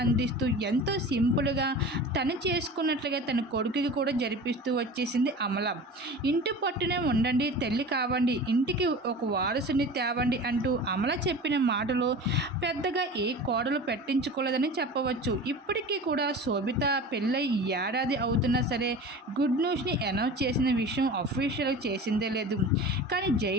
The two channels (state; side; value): normal; both; correlation 0.35